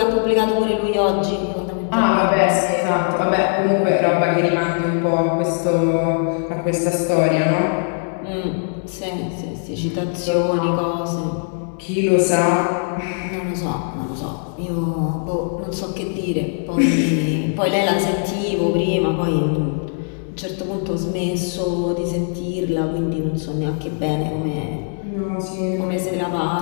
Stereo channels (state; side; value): silent; right; 60 dB below the other